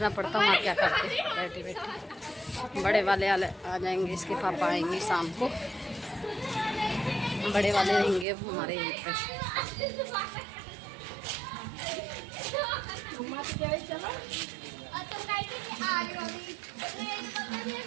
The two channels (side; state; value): left; drops out; at 8.2 s